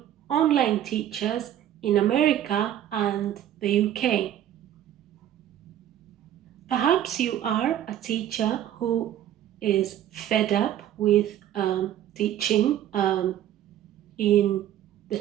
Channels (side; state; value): left; quieter; 11.4 dB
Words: online teachers in America and the UK. Perhaps you are a teacher who is fed up with teaching in the